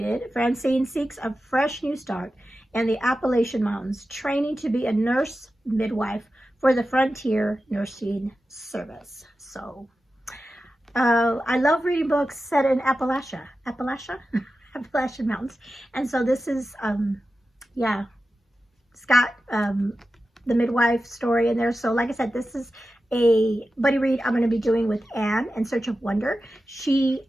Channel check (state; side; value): normal; both; correlation 0.92